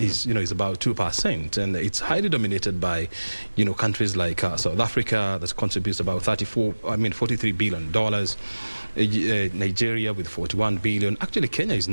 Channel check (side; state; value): both; inverted; correlation -1.00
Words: about 2%, and it's highly dominated by countries like South Africa, that contributes about $43 billion. Nigeria with 41 billion. Actually, Kenya is